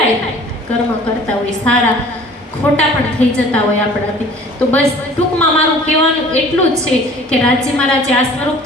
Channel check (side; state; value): both; normal; correlation 0.49